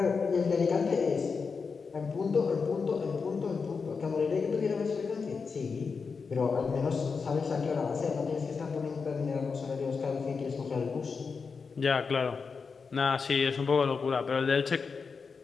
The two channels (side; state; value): right; quieter; 5.2 dB